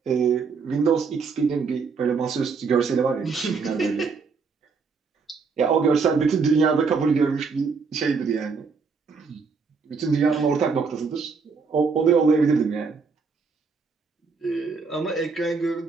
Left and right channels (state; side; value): quieter; left; 5.0 dB